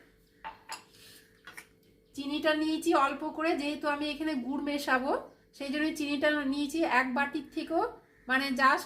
চিনিটা নিয়েছি অল্প করে, যেহেতু আমি এখানে গুড় মেশাবো সেই জন্য চিনিটা নিয়েছি 1 বাটির থেকেও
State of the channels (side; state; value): both; identical; correlation 1.00